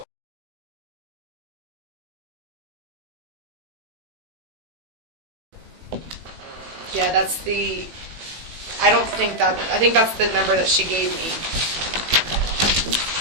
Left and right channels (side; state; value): left; late; 18 ms